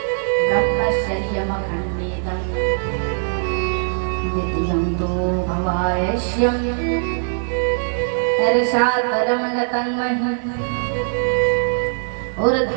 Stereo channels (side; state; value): left; silent; 65 dB below the other